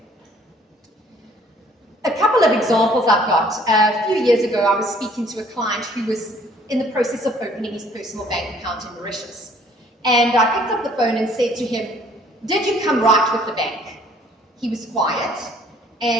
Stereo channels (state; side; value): normal; both; correlation 0.58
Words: A couple of examples I've got. A few years ago, I was speaking to a client who was in the process of opening his personal bank account in Mauritius. And I picked up the phone and said to him, "Did you come right with the bank?" He was quiet,